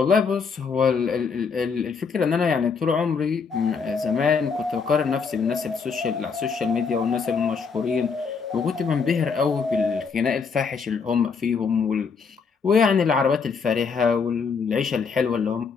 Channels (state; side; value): quieter; right; 5.5 dB